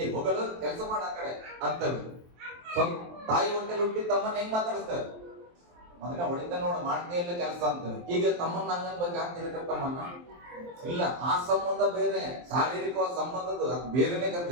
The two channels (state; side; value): late; left; 23 ms